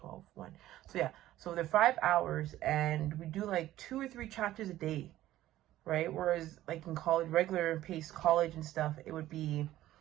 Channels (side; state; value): left; quieter; 14.4 dB